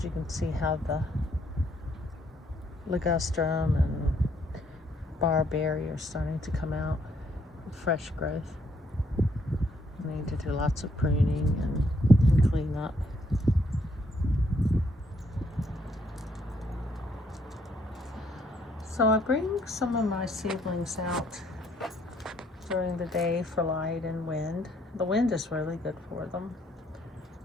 you can see how the ligustrum and barberry are starting to come out, fresh growth. I need to do lots of pruning and clean up. So I bring some of my seedlings out during the day for light and wind. The wind is really good for them,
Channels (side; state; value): both; normal; correlation 0.70